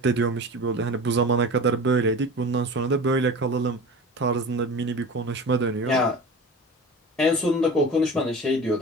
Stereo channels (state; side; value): normal; both; correlation 0.35